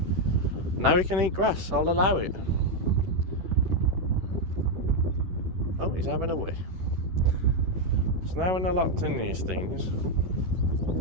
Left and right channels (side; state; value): left; late; 11 ms